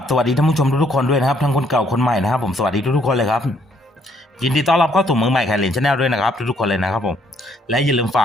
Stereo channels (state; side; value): normal; both; correlation 0.68